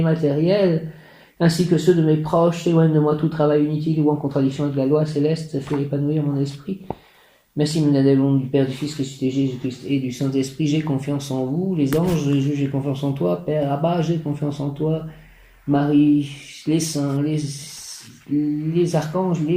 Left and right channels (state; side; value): identical; both; correlation 1.00